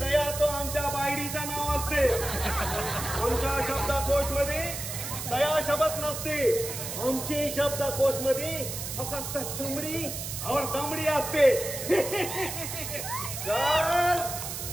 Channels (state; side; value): noise; right; hiss, 6 dB below the sound